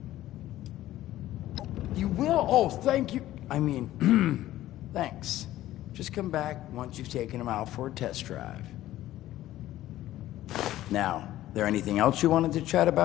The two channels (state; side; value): quieter; right; 14.5 dB